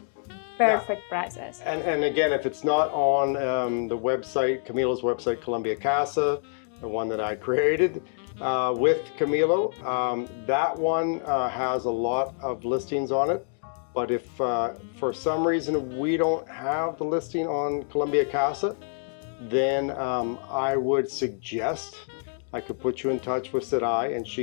perfect prices. And again, if it's not on the website, Camilo's website, Colombia Casa, the one that I created with Camilo, that one has a lot of listings on it. But if for some reason we don't have the listing on Colombia Casa, then I would suggest I could put you in touch with Sarai, and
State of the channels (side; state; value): right; silent; digital silence